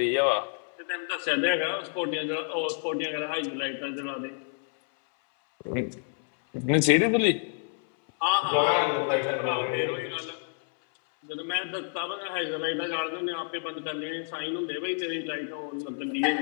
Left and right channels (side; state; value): right; silent; 59 dB below the other